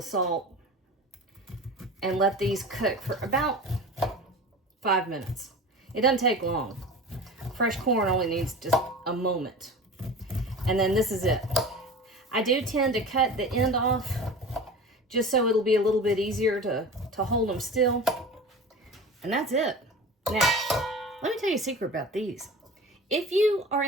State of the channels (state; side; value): normal; both; correlation 0.35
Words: salt, and let these cook for about 5 minutes. It doesn't take long. Fresh corn only needs just a moment. And then this is it. I do tend to cut the end off just so it'll be a little bit easier to hold them still. And that's it. Now, let me tell you a secret about these. If you are